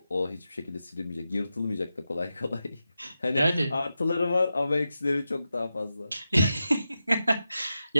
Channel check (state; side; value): inverted; both; correlation -0.90